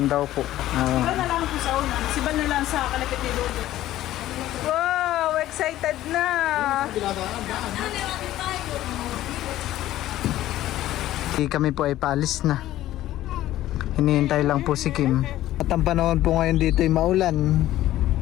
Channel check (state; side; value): quieter; right; 14.2 dB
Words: daw po. Siba na lang po sa una. Siba na lang sa kalapit ni Dodo. Wow! Excited na! Kami po ay paalis na. Hinihintay lang po si Kim. At ang panahon po ngayon dito ay maulan.